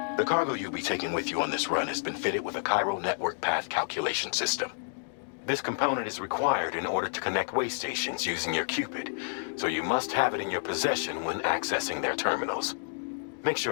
The cargo you'll be taking with you on this run has been fitted with a Cairo network path calculation system. This component is required in order to connect way stations using your Cupid, so you must have it in your possession when accessing their terminals. Make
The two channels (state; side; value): silent; right; digital silence